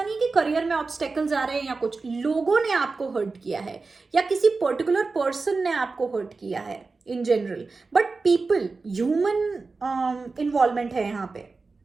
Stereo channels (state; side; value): quieter; left; 4.1 dB